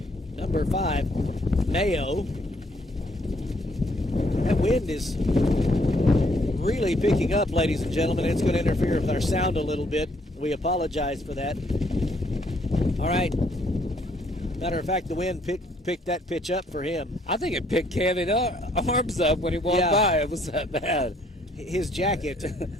5, Mayo. That wind is really picking up, ladies and gentlemen. It's going to interfere with our sound a little bit. We apologize for that. All right. Matter of fact, the wind picked that pitch up for him. I think it picked Kevin's arms up when he walked by. It was that bad. His jacket,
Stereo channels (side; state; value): both; normal; correlation 0.67